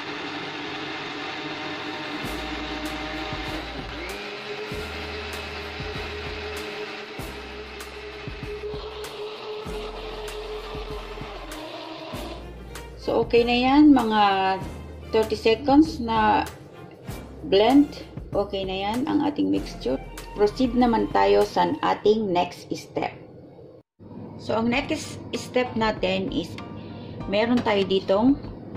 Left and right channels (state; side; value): identical; both; correlation 1.00